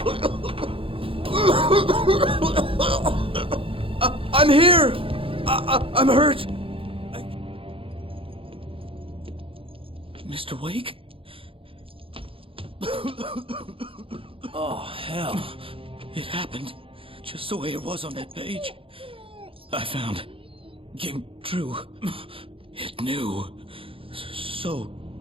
I'm here. I'm hurt. Mr. Wake? Oh, hell. It happened just the way it was on that page. I found. Came true. It knew. So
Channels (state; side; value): late; left; 0.26 ms